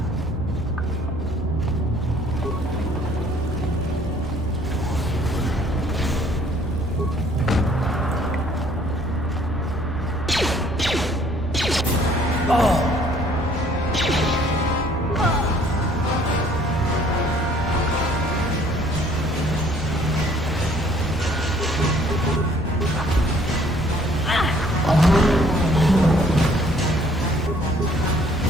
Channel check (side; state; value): both; normal; correlation 0.59